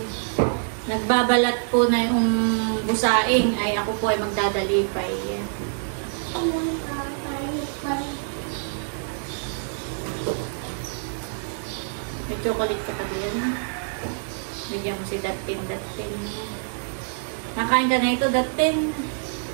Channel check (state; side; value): silent; left; digital silence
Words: nagbabalat po na yung busaing, ay ako po ay magdadalipay. May chocolate ka pa diyan. Bigyan mo si Datin. Nakain ka na ito, Datin?